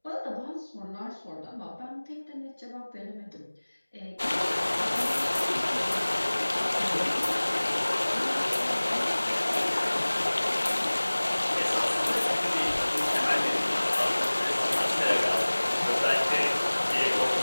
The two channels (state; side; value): inverted; both; correlation -1.00